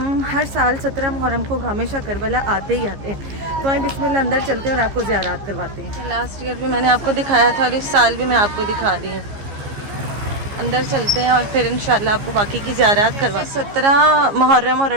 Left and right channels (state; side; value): late; left; 15 ms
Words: हर साल 17 मुहर्रम को गामेशा करबला आते ही आते हैं। तो हम बिस्मिल्लाह अंदर चलते हैं और आपको ज़ियारात करवाते हैं। लास्ट ईयर भी मैंने आपको दिखाया था और इस साल भी मैं आपको दिखा रही हूँ। अंदर चलते हैं और फिर इंशाल्लाह आपको बाकी की ज़ियारत करवा। 17 मुहर्रम और